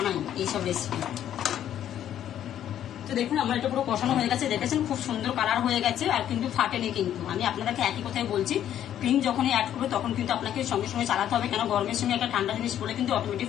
এইসব রেসিপি। তো দেখুন আমার এটা পুরো কষানো হয়ে গেছে, দেখেছেন খুব সুন্দর কালার হয়ে গেছে, আর কিন্তু ফাটেনি। কিন্তু আমি আপনাদেরকে একই কথাই বলছি, ক্রিম যখনই অ্যাড করবে তখন কিন্তু আপনাকে সঙ্গে সঙ্গে চালাতে হবে, কেন গরমের সঙ্গে একটা ঠান্ডা জিনিস পড়লে কিন্তু অটোমেটিক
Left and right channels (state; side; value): quieter; right; 10.8 dB